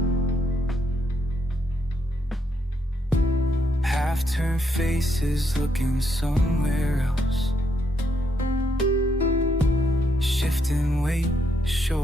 Half-turned faces looking somewhere else. Shifting weight,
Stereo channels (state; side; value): normal; both; correlation 0.76